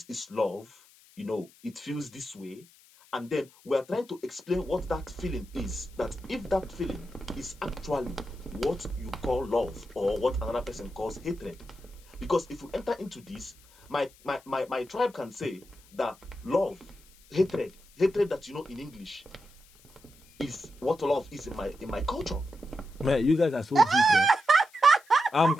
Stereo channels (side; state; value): left; noise; hiss, 27 dB below the sound